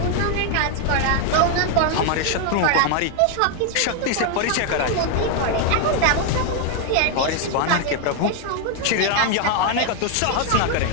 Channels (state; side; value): different; both; correlation 0.01